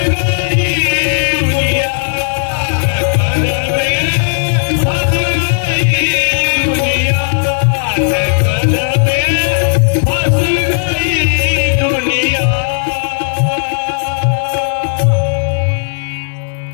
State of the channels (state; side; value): silent; right; digital silence